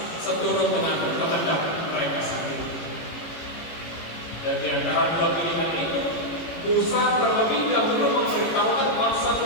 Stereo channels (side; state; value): right; late; 18 ms